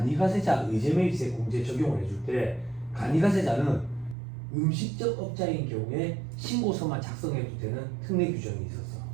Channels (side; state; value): left; drops out; at 4.2 s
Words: 의제매입세 공제 적용을 해줄 때 간이가세자는 음식점 업자인 경우에 신고서만 작성해도 되는 특례 규정이 있었어.